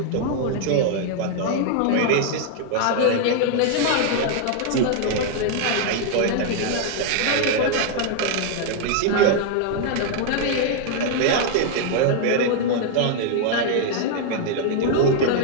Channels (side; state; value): both; different; correlation 0.00